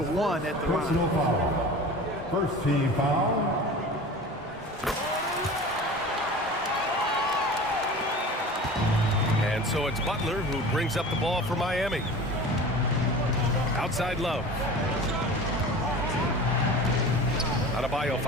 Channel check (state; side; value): normal; both; correlation 0.37